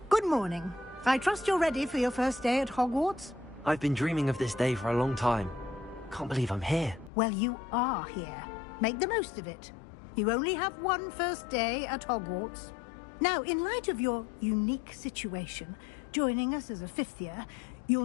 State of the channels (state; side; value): drops out; right; at 7.1 s